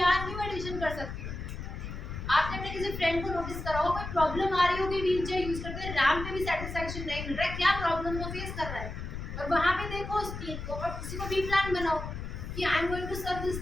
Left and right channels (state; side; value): noise; left; rumble, 7 dB below the sound